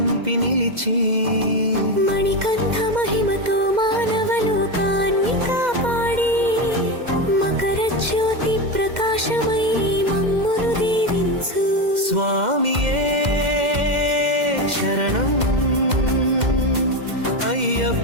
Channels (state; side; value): late; left; 2.1 ms